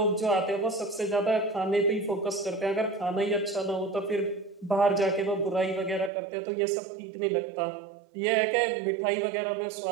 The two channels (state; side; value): drops out; left; at 6.1 s